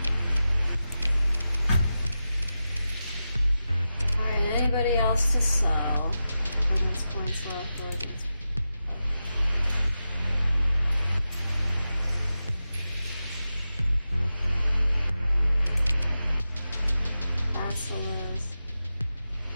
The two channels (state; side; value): inverted; both; correlation -0.91